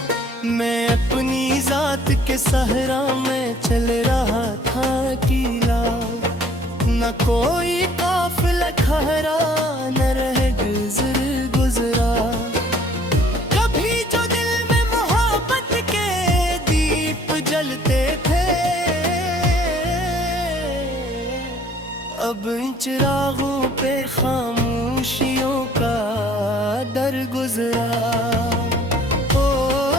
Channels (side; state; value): both; normal; correlation 0.57